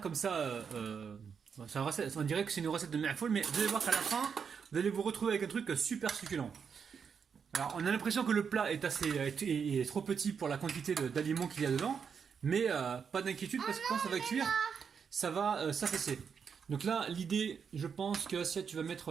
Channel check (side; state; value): left; quieter; 6.6 dB